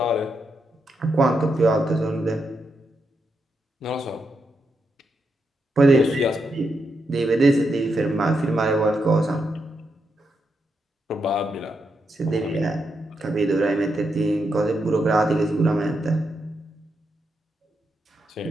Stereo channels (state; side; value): normal; both; correlation 0.83